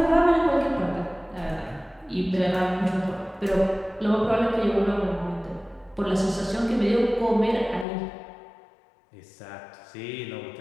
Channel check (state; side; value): drops out; right; at 7.9 s